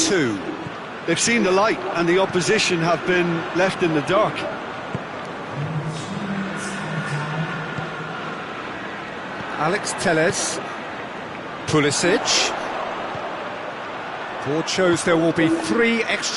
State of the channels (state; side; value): identical; both; correlation 1.00